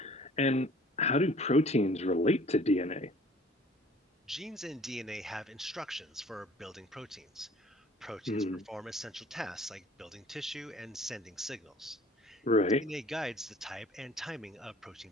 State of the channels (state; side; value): normal; both; correlation 0.51